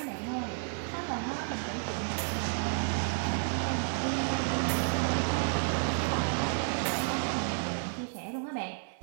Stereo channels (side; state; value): left; silent; digital silence